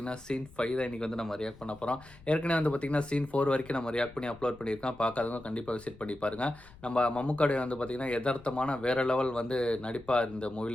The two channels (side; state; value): left; noise; rumble, 22 dB below the sound